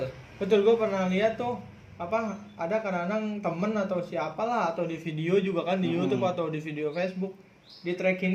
Gue pernah lihat tuh ada kadang-kadang temen atau siapalah, atau di video juga kan, di YouTube atau di video Facebook, di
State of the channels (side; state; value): both; identical; correlation 1.00